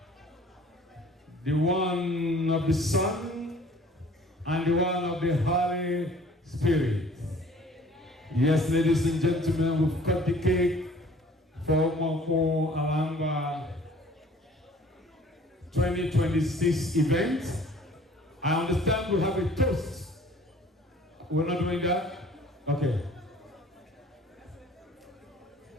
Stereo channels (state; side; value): normal; both; correlation 0.52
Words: the one of the Son, and the one of the Holy Spirit. Yes, ladies and gentlemen, we've cut the cake for Umuokpu Ngwa 2026 event. I understand we have a toast. We're not doing that? Okay.